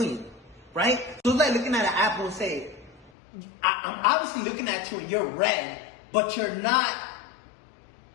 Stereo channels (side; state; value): right; drops out; at 3.1 s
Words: right? So it's like looking at an apple and say, I'm obviously looking at you and you're red, but you're not.